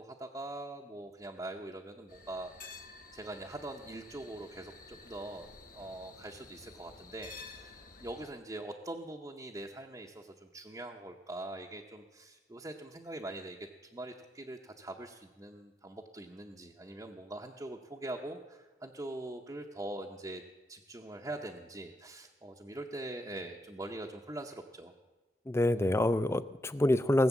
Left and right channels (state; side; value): normal; both; correlation 0.81